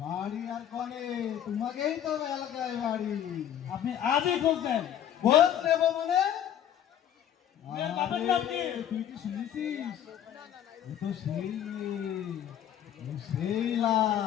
বাড়ি আর কনে, তোমাকেই তো এলাকায় বাড়ি। আপনি আজই খোঁজ নেন? খোঁজ নেবো মানে? তুই কি শুনেছিস? ও তো সেই সেইলা,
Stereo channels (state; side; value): quieter; right; 10.3 dB